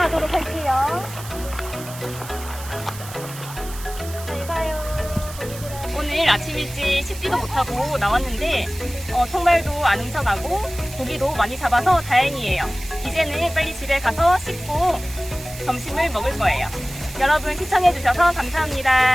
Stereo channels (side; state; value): right; noise; hiss, 14 dB below the sound